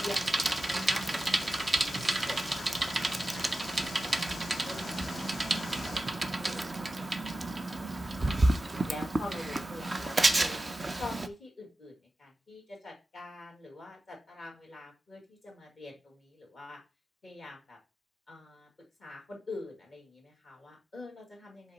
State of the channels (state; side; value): normal; both; correlation 0.94